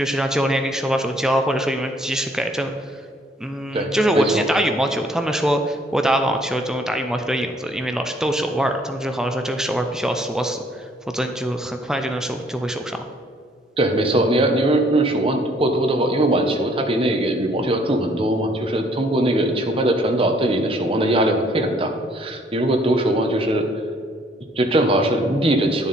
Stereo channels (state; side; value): normal; both; correlation 0.62